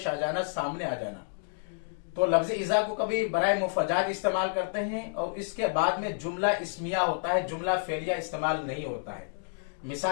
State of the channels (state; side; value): silent; right; digital silence